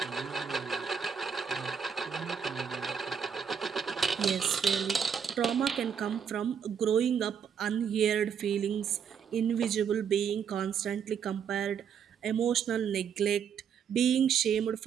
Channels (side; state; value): left; quieter; 7.4 dB